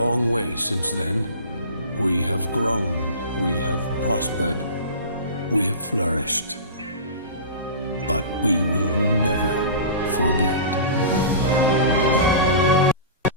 way since then. We have grown, we have prospered, we have flourished. But we will never forget.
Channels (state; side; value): inverted; both; correlation -0.35